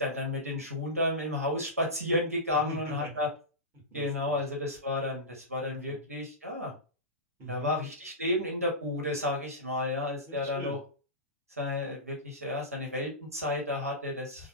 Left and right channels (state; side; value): normal; both; correlation -0.18